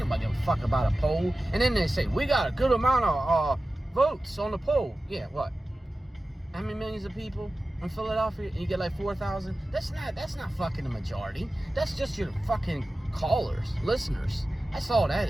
give a fuck about a poll. And then they say, we got a good amount of votes on the poll. Yeah, what? How many millions of people in Philadelphia? And you get like 4,000? That's not fucking the majority. That's just your fucking callers, listeners. That's all that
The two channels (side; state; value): both; normal; correlation 0.95